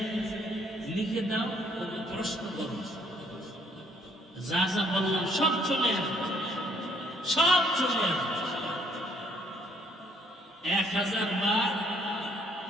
লিখে দাও, ওকে প্রশ্ন করো, যা যা বললাম সব চলে আসবে, সব চলে আসবে। 1000 বার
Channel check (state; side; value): normal; both; correlation 0.65